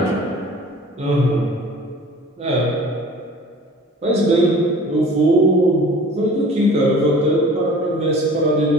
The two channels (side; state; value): both; normal; correlation 0.45